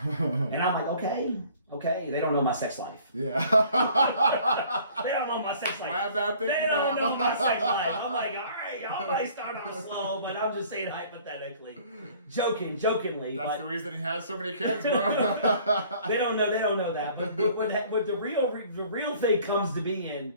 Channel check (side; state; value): both; inverted; correlation -0.54